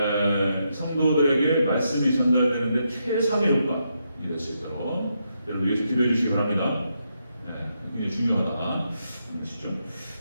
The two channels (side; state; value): both; inverted; correlation -0.81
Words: 성도들에게 말씀이 전달되는데 최상의 효과가 될 수 있도록 여러분 위해서 기도해 주시기 바랍니다. 굉장히 중요하다.